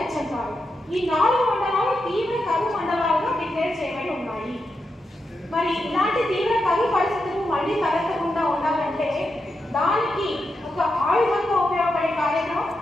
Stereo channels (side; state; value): both; normal; correlation 0.86